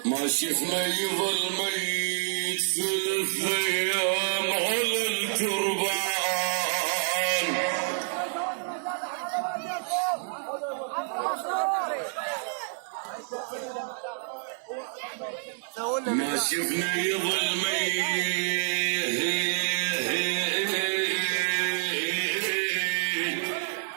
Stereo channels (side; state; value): left; silent; 59 dB below the other